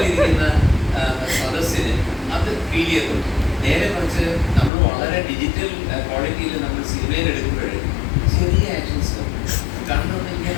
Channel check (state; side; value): drops out; right; at 4.7 s